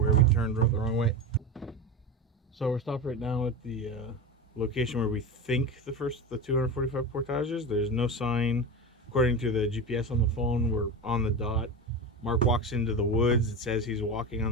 we turned the wrong way. So we're stopped right now at the location where we think the 245 portages. There's no sign. According to the GPS on the phone, we're on the dot. Mark walks into the woods. It says he's walking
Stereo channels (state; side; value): normal; both; correlation 0.23